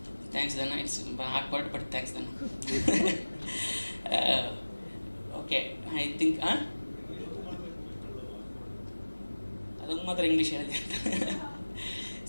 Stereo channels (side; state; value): both; inverted; correlation -1.00